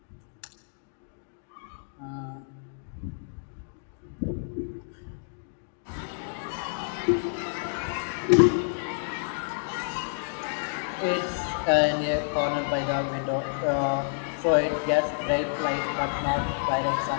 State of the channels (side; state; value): right; silent; digital silence